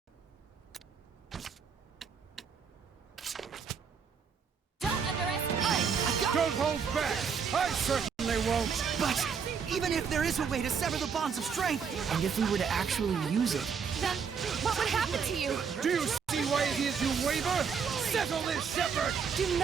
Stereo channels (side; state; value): left; quieter; 6.4 dB